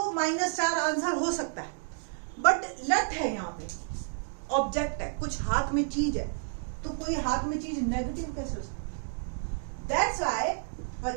-4 आंसर हो सकता है, बट लट है यहाँ पे, ऑब्जेक्ट है, कुछ हाथ में चीज है, तो कोई हाथ में चीज नेगेटिव कैसे हो सकती है? That's why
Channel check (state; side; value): silent; left; digital silence